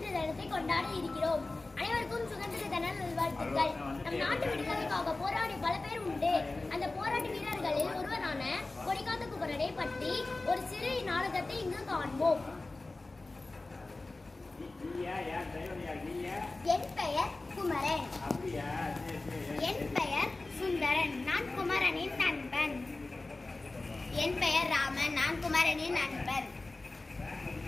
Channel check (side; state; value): right; quieter; 3.2 dB